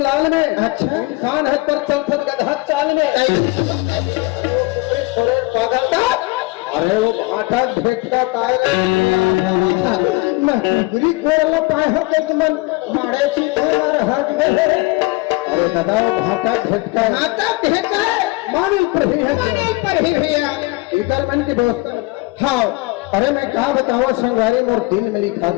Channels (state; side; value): quieter; right; 22.8 dB